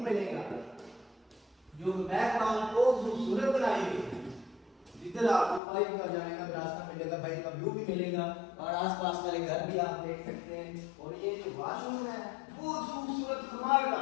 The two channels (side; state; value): right; drops out; at 5.6 s